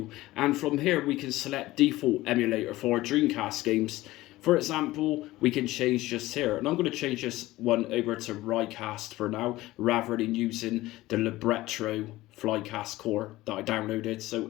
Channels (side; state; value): right; quieter; 17.6 dB